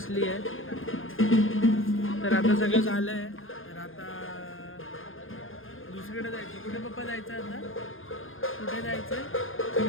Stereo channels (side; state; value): right; late; 0.59 ms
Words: आहे. तर आता सगळं झालं आहे. तर आता दुसरीकडे जायचं. कुठे पप्पा जायचं आता? कुठे जायचं?